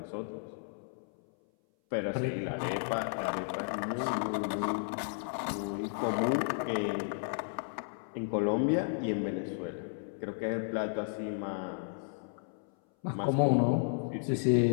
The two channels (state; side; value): silent; right; 56 dB below the other